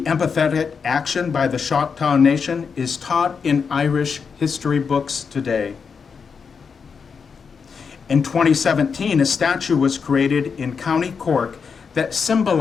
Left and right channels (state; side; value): quieter; right; 5.9 dB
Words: empathetic action by the Choctaw Nation is taught in Irish history books today. In 2017, a statue was created in County Cork that